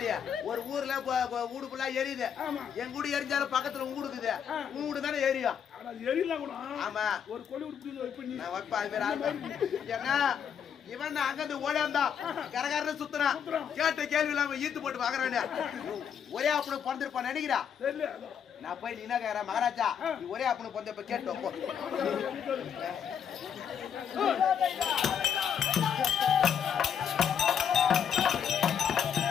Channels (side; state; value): right; quieter; 8.1 dB